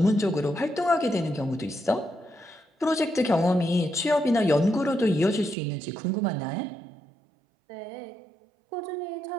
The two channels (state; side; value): drops out; left; at 5.6 s